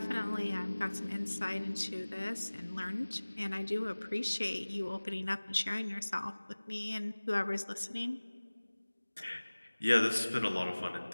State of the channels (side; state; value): both; inverted; correlation -1.00